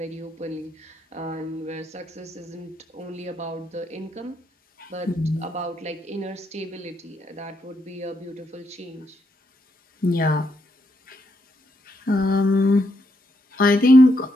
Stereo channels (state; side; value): normal; both; correlation 0.78